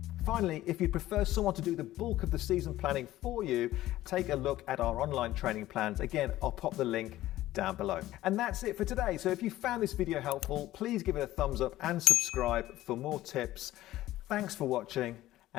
Finally, if you prefer someone to do the bulk of the season planning for you, take a look at our online training plans. Again, I'll pop the link down below. And that's it for today. So if you found this video helpful, please give it a thumbs up and subscribe for more tips. Thanks for watching,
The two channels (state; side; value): quieter; right; 15.2 dB